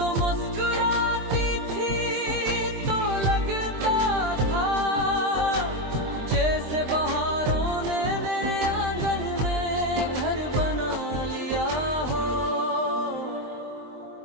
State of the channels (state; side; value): late; left; 23 ms